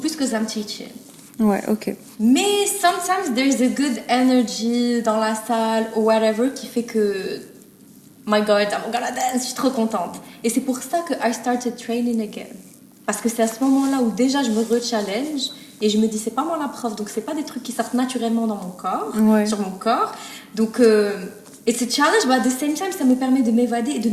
que I'm teaching. Ouais, ok. Mais sometimes there's a good energy dans la salle ou whatever qui fait que my God, I'm gonna dance, je suis trop contente. Et c'est pour ça que I started training again. Parce que c'est à ce moment-là où déjà je me re-challenge et je me dis c'est pas moi la prof, donc c'est pas des trucs qui sortent naturellement dans mon corps, sur mon corps. Donc it's a challenge, but at the same time ça me permet de m'évader et de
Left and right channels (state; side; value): identical; both; correlation 1.00